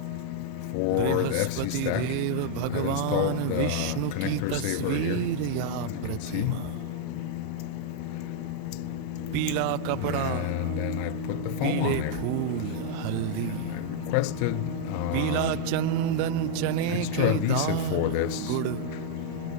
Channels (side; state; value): both; different; correlation -0.01